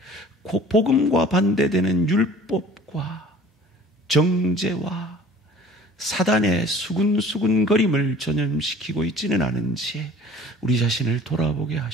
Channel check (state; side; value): normal; both; correlation 0.48